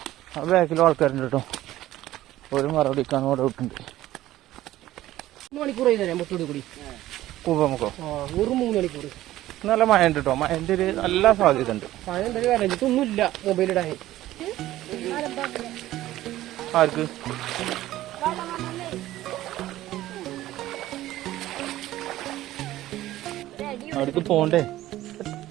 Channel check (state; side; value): quieter; left; 15.0 dB